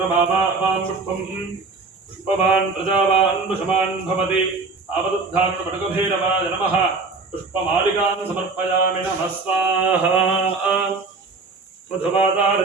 पुष्पं पुष्पवान् प्रजावान् पुष्पवान् भवति आवरुद्धारणपटुकभैरवाय नमः पुष्पमालिकां समर्पयामि नमः स्वाहा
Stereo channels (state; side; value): quieter; left; 4.1 dB